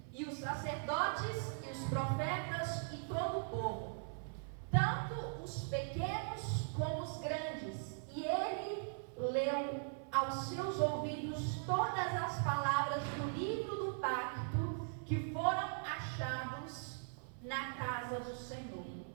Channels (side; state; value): left; silent; 51 dB below the other